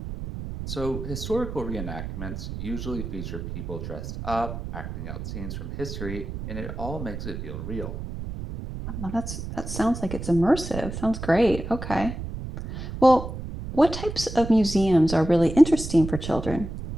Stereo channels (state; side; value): noise; right; rumble, 7 dB below the sound